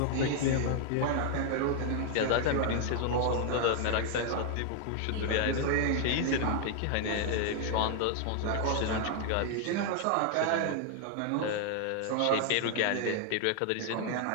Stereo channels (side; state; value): both; different; correlation 0.00